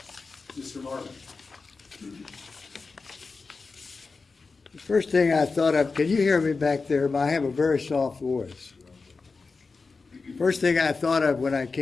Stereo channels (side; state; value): right; quieter; 4.3 dB